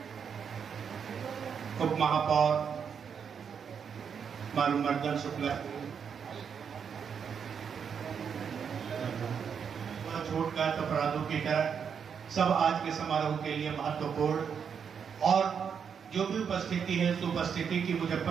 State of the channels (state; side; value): quieter; left; 7.0 dB